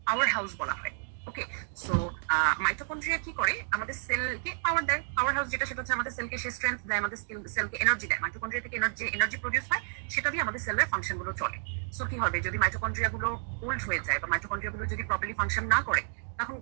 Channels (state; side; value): silent; left; digital silence